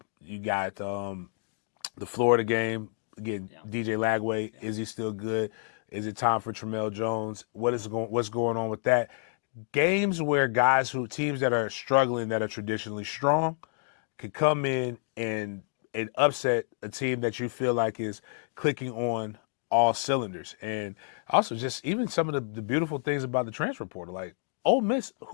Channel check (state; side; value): silent; right; 58 dB below the other